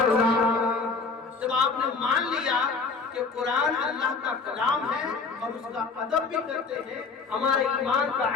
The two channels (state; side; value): quieter; right; 4.6 dB